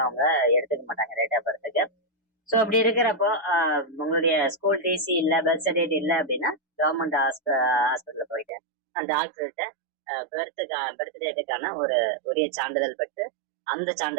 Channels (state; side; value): drops out; left; at 8.5 s